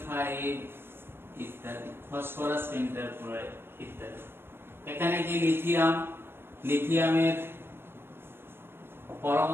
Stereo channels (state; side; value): late; left; 0.11 ms